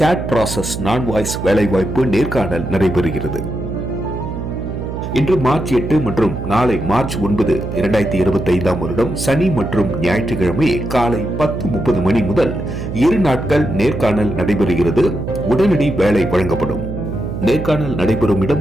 ப்ராசஸ் நான் வாய்ஸ் வேலைவாய்ப்பு நேர்காணல் நடைபெறுகிறது. இன்று மார்ச் 8 மற்றும் நாளை மார்ச் 9, 2025 வருடம் சனி மற்றும் ஞாயிற்றுக்கிழமை காலை 10:30 மணி முதல் 2 நாட்கள் நேர்காணல் நடைபெறுகிறது. உடனடி வேலை வழங்கப்படும். நேர்காணல் நடைபெறும் இடம்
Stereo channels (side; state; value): right; noise; hum, 6 dB below the sound